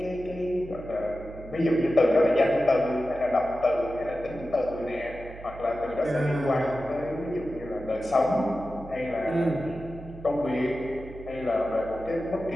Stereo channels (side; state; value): right; noise; hum, 15 dB below the sound